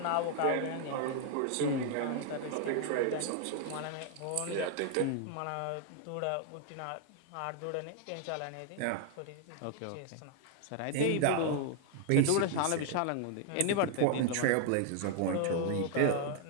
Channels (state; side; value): different; both; correlation 0.00